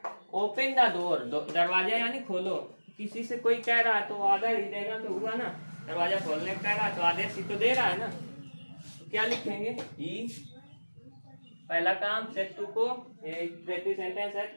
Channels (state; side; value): inverted; both; correlation -1.00